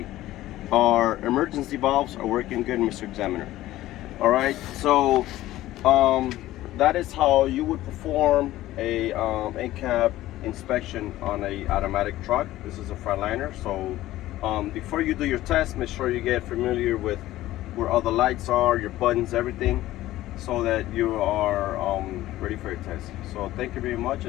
our emergency valves are working good, Mr. Examiner. All right, so that is how you would perform a Incab inspection on a automatic truck. This is a Freightliner. So before you do your test, make sure you get familiar with where all the lights are, your buttons, everything, so that you are ready for your test. So thank you very much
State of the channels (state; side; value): quieter; right; 15.5 dB